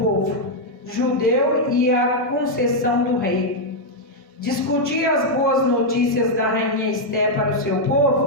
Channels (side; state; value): both; normal; correlation -0.02